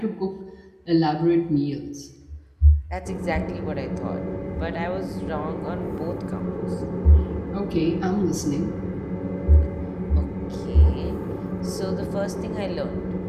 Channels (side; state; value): both; identical; correlation 1.00